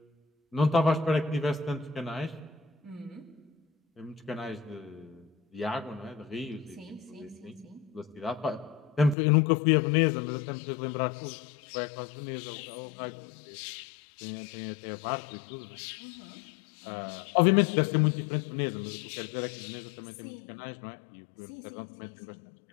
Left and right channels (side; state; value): right; drops out; at 9.2 s